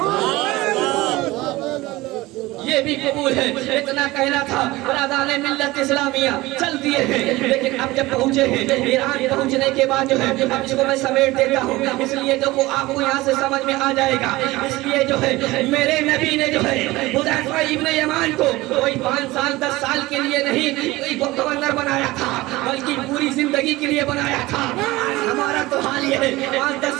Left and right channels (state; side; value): quieter; left; 19.6 dB